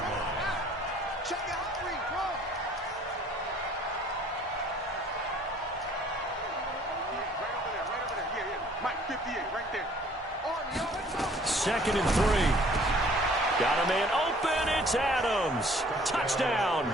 Mike 58 right there. 2nd and 3. Got a man open. It's Adams. Touchdown,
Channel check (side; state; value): both; normal; correlation 0.56